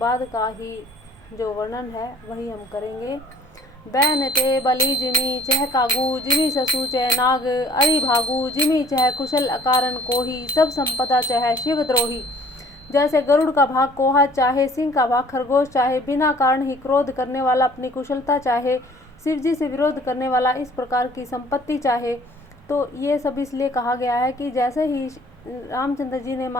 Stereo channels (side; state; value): right; noise; rumble, 28 dB below the sound